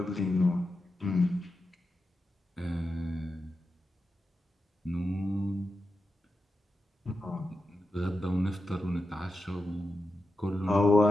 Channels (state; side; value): normal; both; correlation 0.90